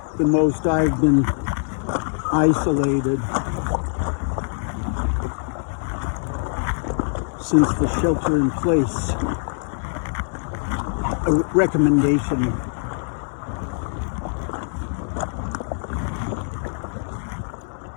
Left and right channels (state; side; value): silent; right; 61 dB below the other